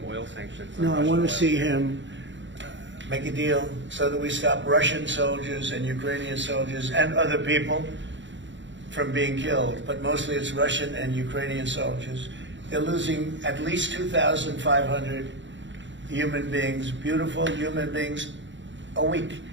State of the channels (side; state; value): left; late; 0.54 ms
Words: oil sanctions on No, I Russian want oil? to see him make a deal so that we stop Russian soldiers and Ukrainian soldiers and other people from being killed. But mostly it's Russian and Ukrainian soldiers. They're losing at least 2,500 human beings, beautiful human beings, a week.